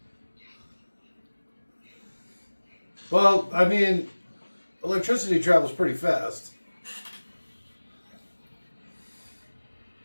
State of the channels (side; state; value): both; inverted; correlation -1.00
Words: Well, I mean, electricity travels pretty fast.